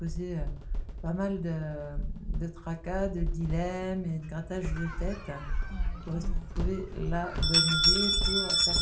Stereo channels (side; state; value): both; identical; correlation 1.00